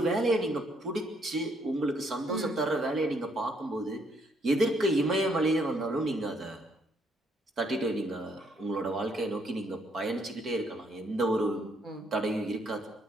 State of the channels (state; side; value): normal; both; correlation 0.70